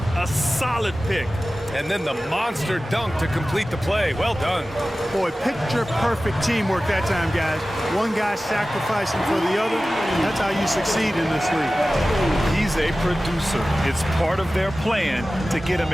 A solid pick. And then the monster dunk to complete the play. Well done. Boy, picture-perfect teamwork that time, guys. One guy sacrificing for the other. That's how you succeed in this league. He's a producer. It's part of their plan to get him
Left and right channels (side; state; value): both; normal; correlation 0.96